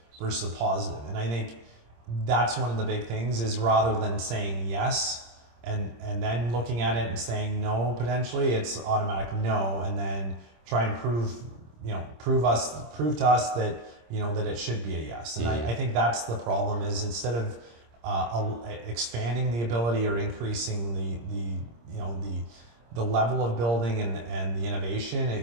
versus a positive. And I think that's one of the big things is rather than saying yes and then looking at it and saying no, potentially it's automatic no, and then try and prove to us that that it should be a yes. And I think that's the problem is instead of expanding the ability or increasing the level of building and the innovation,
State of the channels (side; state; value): left; late; 26 ms